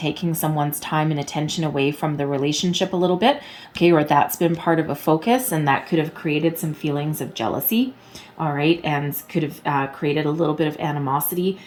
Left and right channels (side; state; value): both; identical; correlation 1.00